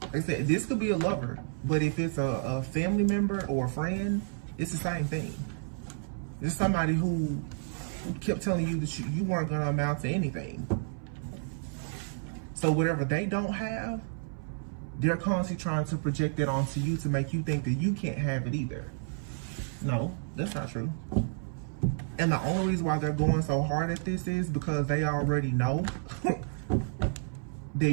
Like I said, this could be a lover, but if it's a family member or a friend, it's the same thing. It's somebody who kept telling you that you weren't going to amount to anything. So whatever they don't have, They're constantly trying to project it onto you to make you think that you can't have it either. No, that's not true. And the only reason why they're going so hard at this is because they already know that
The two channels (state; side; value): silent; left; 57 dB below the other